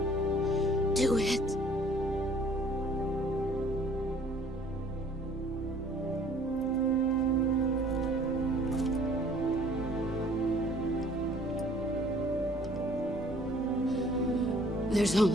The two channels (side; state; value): both; normal; correlation 0.55